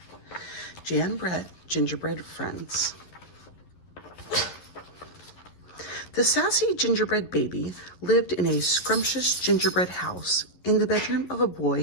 Jan Brett, Gingerbread Friends. The sassy gingerbread baby lived in a scrumptious gingerbread house in the bedroom of a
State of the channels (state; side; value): late; right; 11 ms